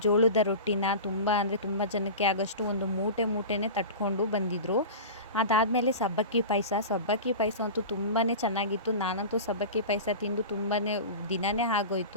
ಜೋಳದ ರೊಟ್ಟಿನ ತುಂಬ ಜನಕ್ಕೆ ಆಗೋಷ್ಟು ಒಂದು ಮೂಟೆನೇ ತಟ್ಕೊಂಡು ಬಂದಿದ್ದರು. ಅದಾದಮೇಲೆ ಸಬ್ಬಕ್ಕಿ ಪಾಯಸ ಅಂತೂ ತುಂಬಾ ಚೆನ್ನಾಗಿತ್ತು. ನಾನಂತೂ ಸಬ್ಬಕ್ಕಿ ಪಾಯಸ ತಿಂದು ತುಂಬಾ ದಿನವೇ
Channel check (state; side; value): inverted; both; correlation -0.31